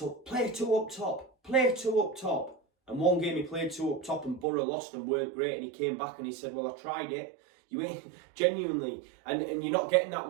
play two up top, and one game he played two up top and Borough lost and weren't great, and he came back and he said, well, I tried it. You ain't genuinely, and you're not getting that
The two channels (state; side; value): drops out; left; at 4.5 s